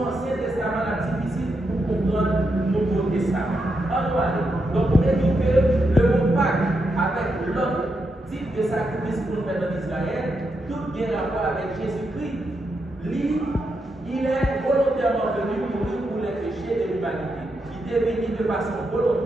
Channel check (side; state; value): both; normal; correlation 0.83